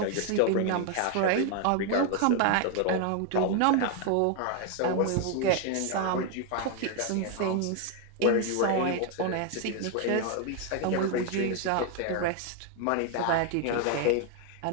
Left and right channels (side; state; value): both; different; correlation 0.01